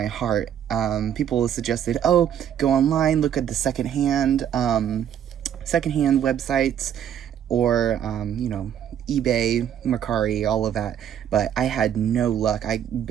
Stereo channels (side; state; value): left; quieter; 9.6 dB